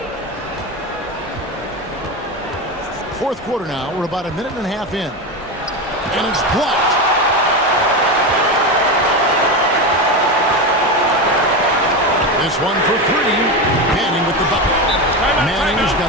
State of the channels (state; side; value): normal; both; correlation 0.18